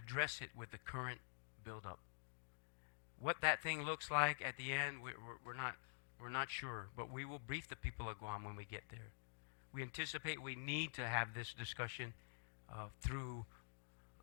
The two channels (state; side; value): silent; right; digital silence